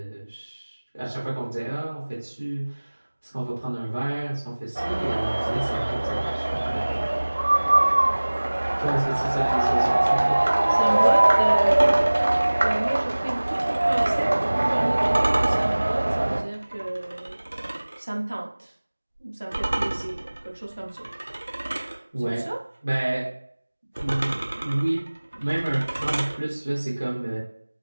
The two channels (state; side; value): inverted; both; correlation -1.00